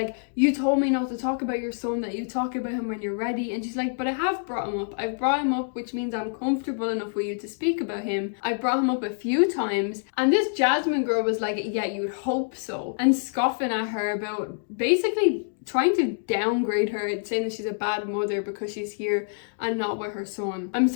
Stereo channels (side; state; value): right; silent; digital silence